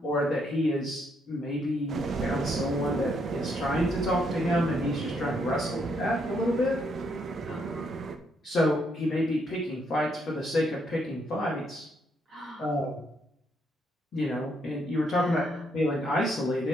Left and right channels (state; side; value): normal; both; correlation 0.74